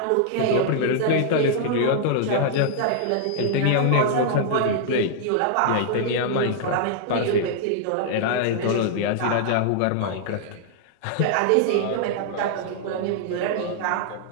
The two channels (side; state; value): both; different; correlation -0.01